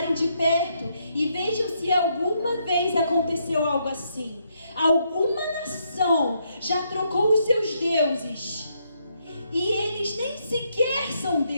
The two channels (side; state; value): both; inverted; correlation -0.76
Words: de perto e vejam se alguma vez aconteceu algo assim. Alguma nação já trocou os seus deuses e eles nem sequer são